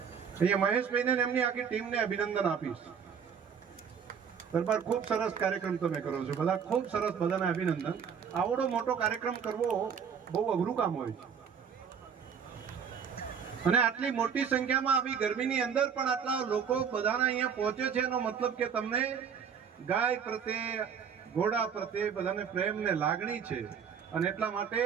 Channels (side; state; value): left; quieter; 7.1 dB